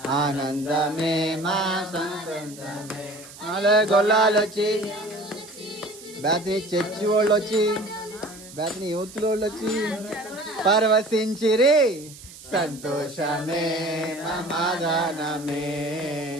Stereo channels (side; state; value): right; noise; hiss, 18 dB below the sound